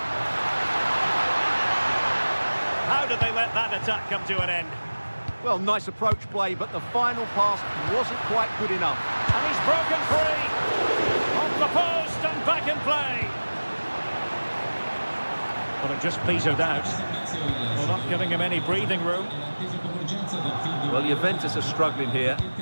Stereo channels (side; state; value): both; inverted; correlation -1.00